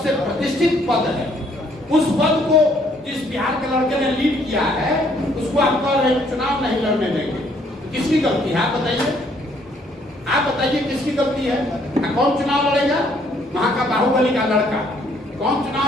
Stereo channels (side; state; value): both; normal; correlation 0.65